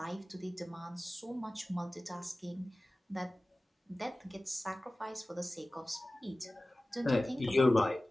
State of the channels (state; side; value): normal; both; correlation 0.97